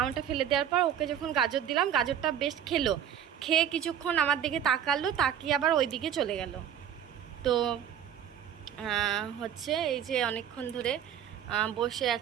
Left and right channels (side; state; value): left; quieter; 9.5 dB